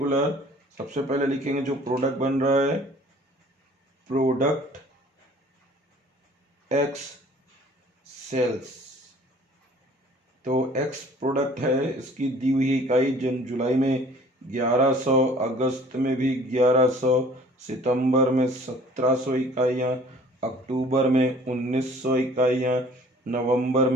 सबसे पहले लिखेंगे जो प्रोडक्ट बन रहा है, प्रोडक्ट एक्स सेल्स। तो एक्स प्रोडक्ट है, इसकी दी हुई इकाई जुलाई में 1100, अगस्त में भी 1100, सितंबर में 1700 इकाइयाँ, अक्टूबर में 1900 इकाइयाँ, नवंबर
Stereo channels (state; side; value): normal; both; correlation 0.52